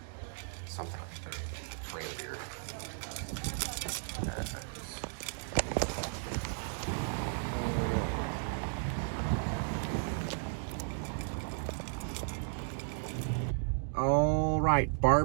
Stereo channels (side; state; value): left; silent; digital silence